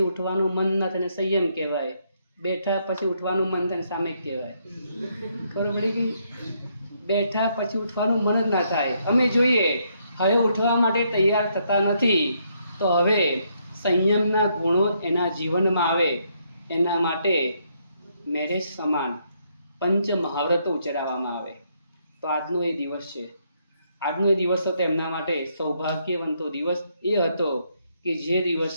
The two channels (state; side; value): inverted; both; correlation -0.74